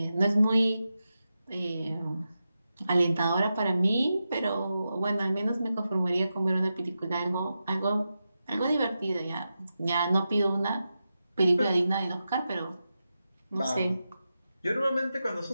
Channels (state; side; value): inverted; both; correlation -0.90